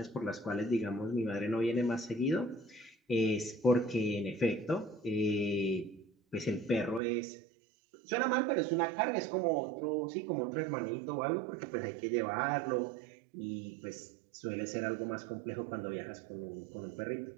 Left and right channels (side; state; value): left; drops out; at 7.0 s